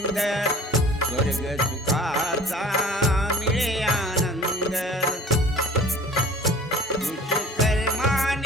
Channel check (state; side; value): normal; both; correlation 0.46